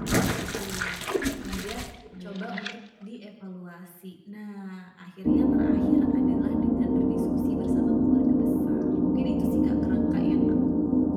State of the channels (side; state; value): both; identical; correlation 1.00